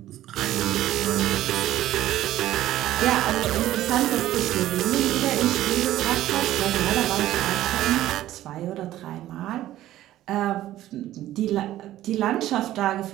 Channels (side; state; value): left; quieter; 14.0 dB